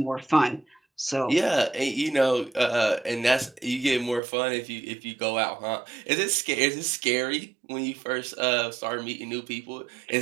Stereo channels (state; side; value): drops out; left; at 4.2 s